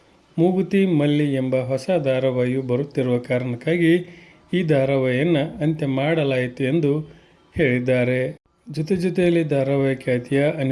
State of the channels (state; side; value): identical; both; correlation 1.00